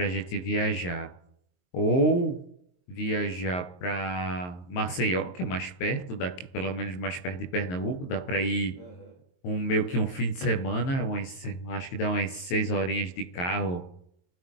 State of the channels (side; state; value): right; late; 22 ms